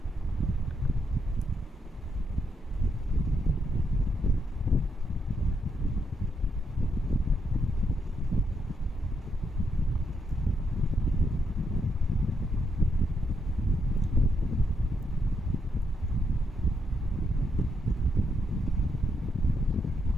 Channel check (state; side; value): normal; both; correlation 0.79